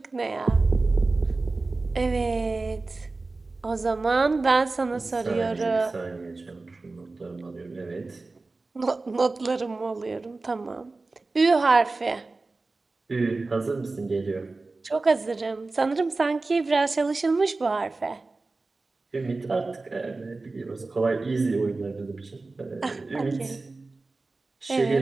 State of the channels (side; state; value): left; quieter; 3.5 dB